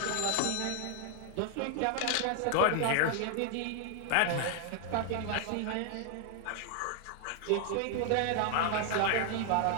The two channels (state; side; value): different; both; correlation 0.00